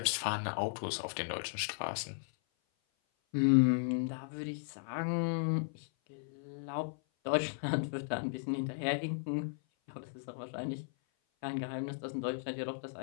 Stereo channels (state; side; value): silent; right; 54 dB below the other